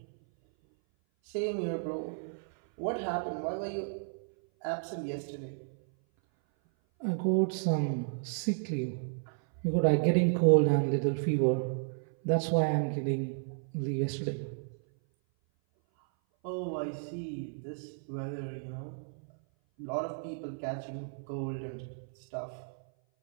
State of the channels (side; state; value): left; silent; 56 dB below the other